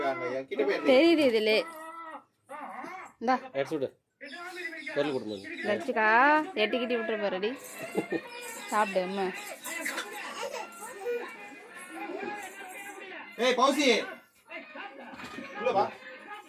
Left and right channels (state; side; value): identical; both; correlation 1.00